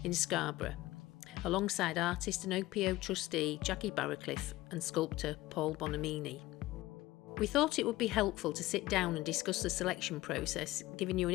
in Scarborough, alongside artist and OPO trustee Jackie Barracliff and sculptor Paul Bonamini. We thought it would be helpful to sit down and discuss the selection process, giving you an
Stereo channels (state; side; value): quieter; right; 17.8 dB